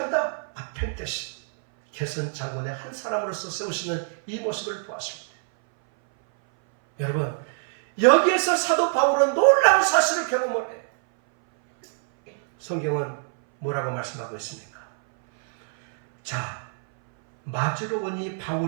아펜테신 개선 장군의 한 사람으로서 세우시는 이 모습을 보았을 때 여러분, 여기에서 사도 바울은 놀라운 사실을 경험을 해요. 성경은 뭐라고 말씀하고 있습니까? 자, 맞으러 오니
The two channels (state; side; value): silent; left; 60 dB below the other